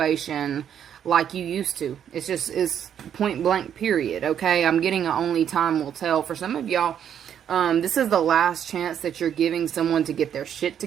like you used to. It's point blank period, okay? I'm getting a only time will tell. For some of y'all, this is the last chance that you're giving someone to get their shit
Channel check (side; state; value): left; quieter; 9.1 dB